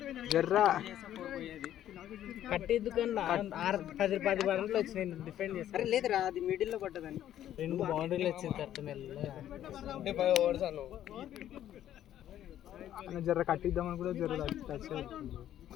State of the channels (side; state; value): right; quieter; 11.6 dB